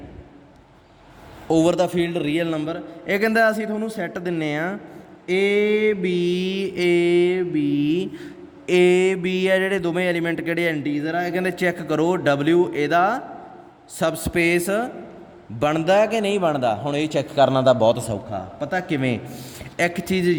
ਓਵਰ ਦਾ ਫੀਲਡ ਰੀਅਲ ਨੰਬਰ। ਇਹ ਕਹਿੰਦਾ ਅਸੀਂ ਤੁਹਾਨੂੰ ਸੈੱਟ ਦਿੰਨੇ ਆ A B ਆ ਜਿਹੜੇ ਦੋਵੇਂ ਐਲੀਮੈਂਟ ਕਿਹੜੇ ਇੰਟੀਜ਼ਰ ਆ। ਇਹ ਕਹਿੰਦੇ ਚੈੱਕ ਕਰੋ W ਇਹਦਾ ਸਬ ਸਪੇਸ ਬਣਦਾ ਕਿ ਨਹੀਂ ਬਣਦਾ। ਹੁਣ ਇਹ ਚੈੱਕ ਕਰਨਾ ਤਾਂ ਬਹੁਤ ਸੌਖਾ, ਪਤਾ ਕਿਵੇਂ? ਇੱਕ ਚੀਜ਼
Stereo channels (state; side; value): identical; both; correlation 1.00